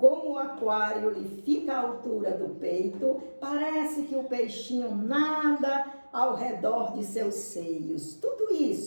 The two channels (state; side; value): inverted; both; correlation -1.00